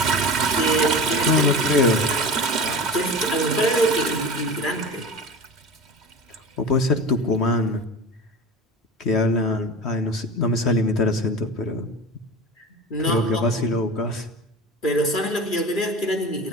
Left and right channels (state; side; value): normal; both; correlation 0.32